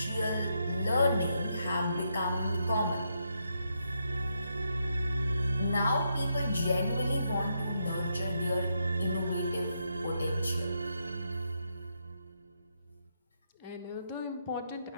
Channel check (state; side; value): inverted; both; correlation -0.80